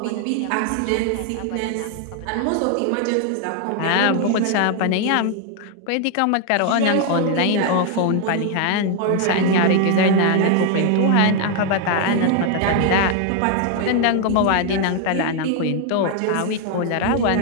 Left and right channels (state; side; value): different; both; correlation 0.00